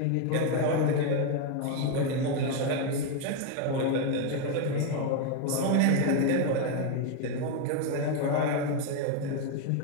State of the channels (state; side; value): different; both; correlation 0.01